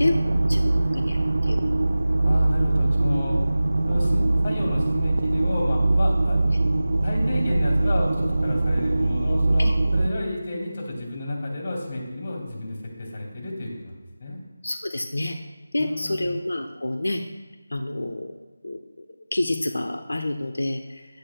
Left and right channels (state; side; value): inverted; both; correlation -0.97